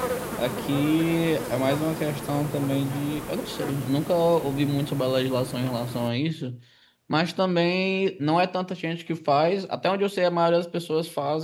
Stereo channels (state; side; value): identical; both; correlation 1.00